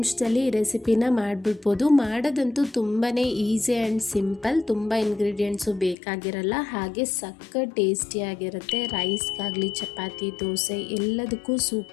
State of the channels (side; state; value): right; drops out; at 6.0 s